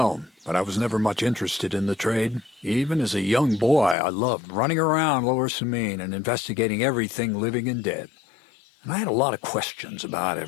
but I was never much interested in the trade. Even as a young boy, I loved running around Lower Samine and investigating everything living and dead. And I had a lot of questions about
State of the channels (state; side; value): drops out; right; at 4.0 s